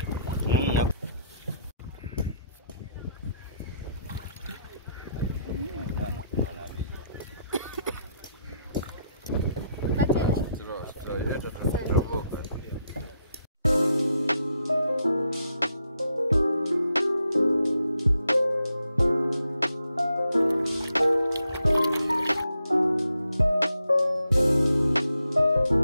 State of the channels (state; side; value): inverted; both; correlation -0.78